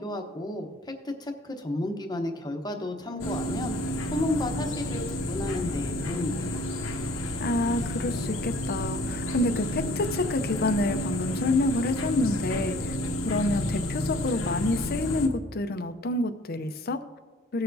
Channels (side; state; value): both; normal; correlation 0.53